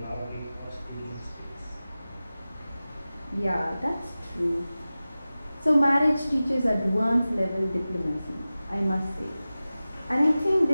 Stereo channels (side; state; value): both; inverted; correlation -0.96